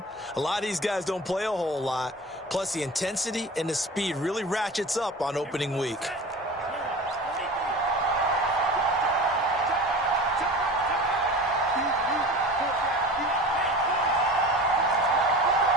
a lot of these guys don't play a whole lot. Plus the intensity and the speed really ratchets up on opening week.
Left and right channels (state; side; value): normal; both; correlation 0.36